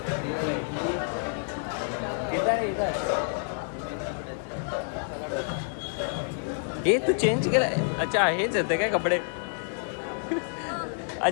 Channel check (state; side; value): silent; right; 59 dB below the other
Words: हे तू चेंज केलं. अच्छा हेच येते काय कपडे?